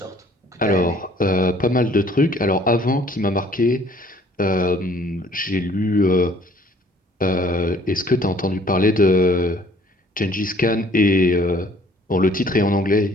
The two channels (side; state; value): both; normal; correlation 0.57